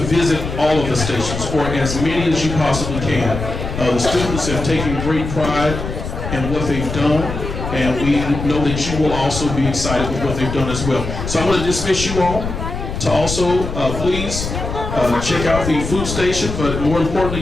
all of the stations, or as many as you possibly can. The students have taken great pride in what they've done, and we know that you will also be excited with what they've done as well. So I'm going to dismiss you all to also please check out the food station, but more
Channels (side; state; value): left; noise; rumble, 6 dB below the sound